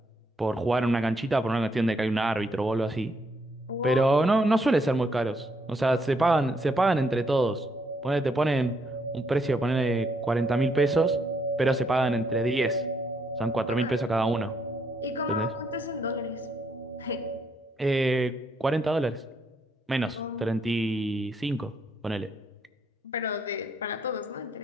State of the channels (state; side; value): normal; both; correlation 0.74